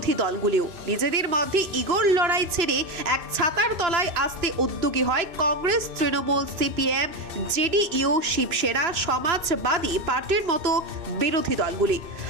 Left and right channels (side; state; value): left; late; 2.6 ms